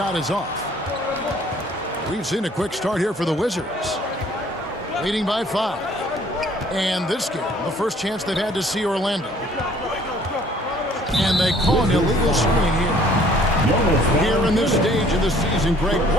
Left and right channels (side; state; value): both; normal; correlation 0.57